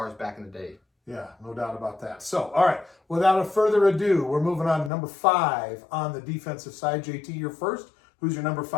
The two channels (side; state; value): right; drops out; at 4.9 s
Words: back in the day. Yeah, no doubt about that. So, all right, without further ado, we're moving on to number 5 on the defensive side. JT, you're first. Who's your number